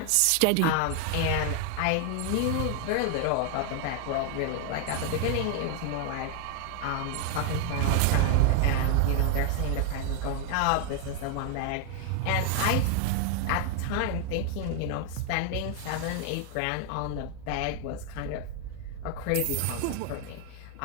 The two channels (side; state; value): both; different; correlation 0.01